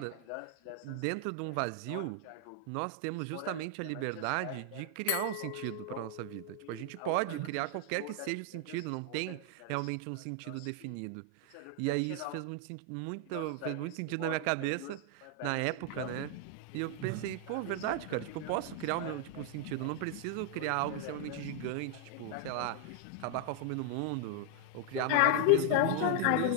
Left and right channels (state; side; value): different; both; correlation 0.00